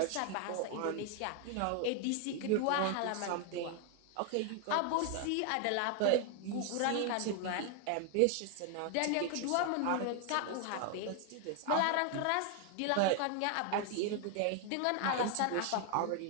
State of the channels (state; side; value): different; both; correlation 0.00